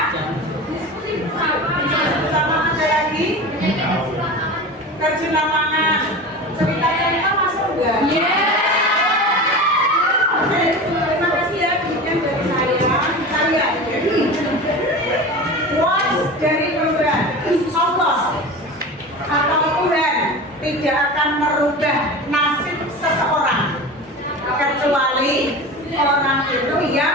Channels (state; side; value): normal; both; correlation 0.31